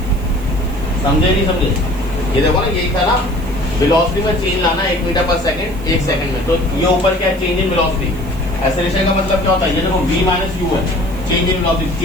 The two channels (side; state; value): right; noise; hiss, 22 dB below the sound